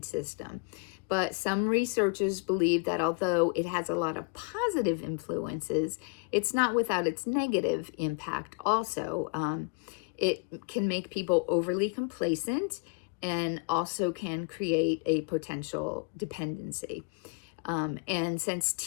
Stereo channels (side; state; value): right; quieter; 36.9 dB